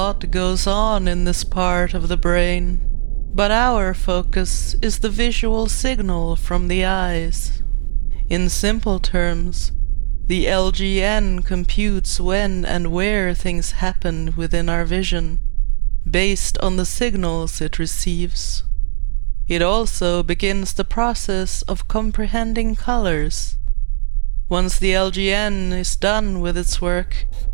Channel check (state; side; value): silent; left; digital silence